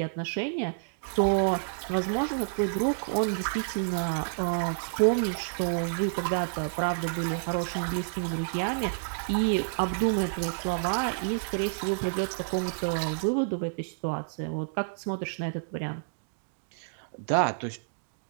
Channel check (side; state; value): left; silent; digital silence